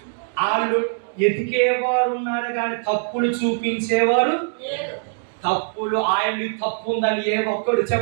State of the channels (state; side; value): silent; left; digital silence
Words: వాళ్ళు ఎతికేవారు ఉన్నారు కానీ తప్పులు చూపించేవారు. తప్పులు ఆయన తప్పు ఉందని ఏ ఒక్కడు